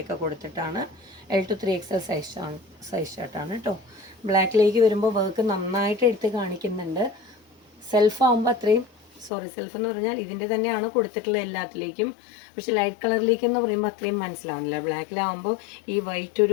കൊടുത്തിട്ടാണ്. L to 3XL സൈസ് ഷർട്ടാണ് കേട്ടോ. ബ്ലാക്കിലേക്ക് വരുമ്പോൾ വർക്ക് നന്നായിട്ട് എടുത്ത് കാണിക്കുന്നുണ്ട്. സെൽഫ് ആകുമ്പോൾ അത്രയും സെൽഫ് എന്ന് പറഞ്ഞാൽ ഇതിൻ്റെ തന്നെയാണ് കൊടുത്തിട്ടുള്ളത് എല്ലാത്തിലേക്കും. പക്ഷെ ലൈറ്റ് കളറിലേക്ക് എന്ന് പറയുമ്പോൾ അത്രയും മനസ്സിലാവുന്നില്ല. ബ്ലാക്കിലാവുമ്പോൾ ഈ വൈറ്റ്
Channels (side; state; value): right; drops out; at 9.3 s